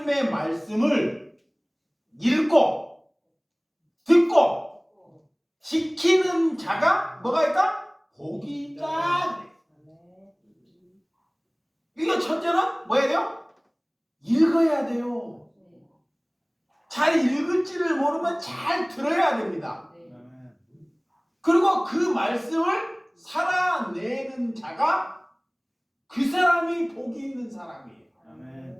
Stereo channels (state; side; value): identical; both; correlation 1.00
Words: 말씀을 읽고 듣고 지키는 자가 뭐가 있다? 복이 있다. 이거 첫째는 뭐 해야 돼요? 읽어야 돼요. 잘 읽을지를 모르면 잘 들어야 됩니다. 그리고 그 말씀을 살아내는 자가 그 사람이 복이 있는 사람이에요.